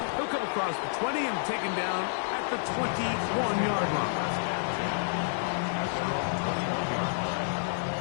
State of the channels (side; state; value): right; silent; digital silence